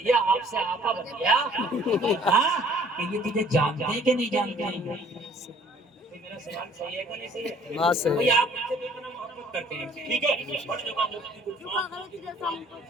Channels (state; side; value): normal; both; correlation 0.56